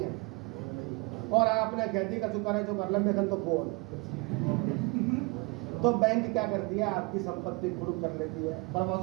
और आपने कहती का चुका है जो कर लंबे तो बोल, तो बैंक क्या करती है? आपकी संपत्ति पूर्ण कर लेती है,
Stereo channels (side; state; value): left; quieter; 27.7 dB